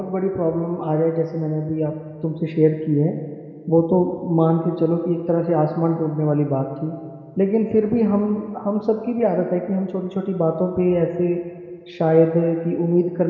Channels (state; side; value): identical; both; correlation 1.00